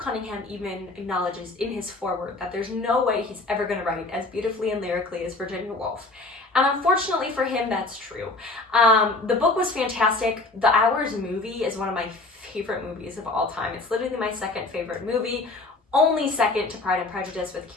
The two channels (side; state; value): right; quieter; 3.2 dB